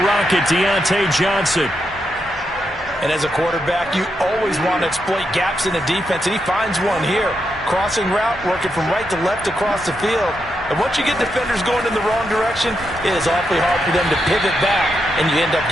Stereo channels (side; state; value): both; normal; correlation 0.83